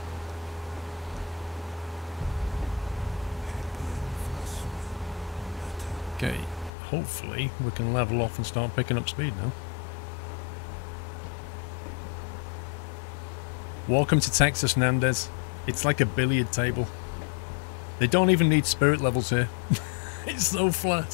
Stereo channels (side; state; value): right; drops out; at 6.7 s